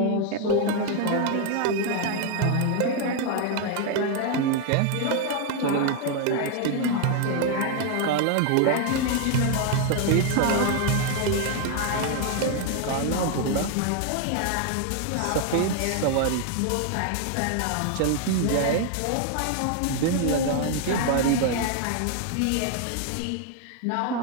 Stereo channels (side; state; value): both; different; correlation 0.00